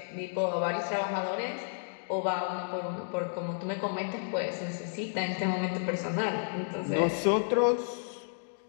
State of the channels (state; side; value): silent; right; digital silence